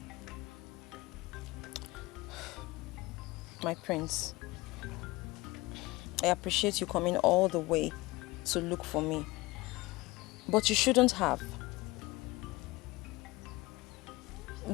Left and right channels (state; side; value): quieter; right; 21.2 dB